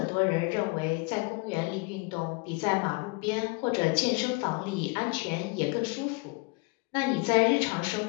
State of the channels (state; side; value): quieter; right; 27.3 dB